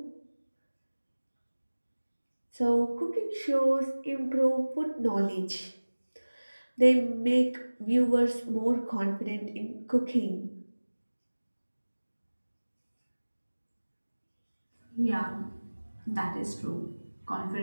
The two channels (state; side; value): inverted; both; correlation -1.00